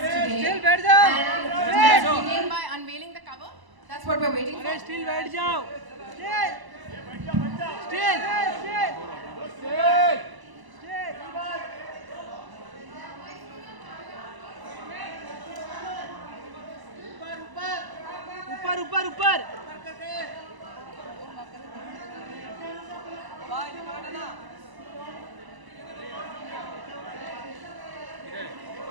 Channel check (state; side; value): late; left; 1.0 ms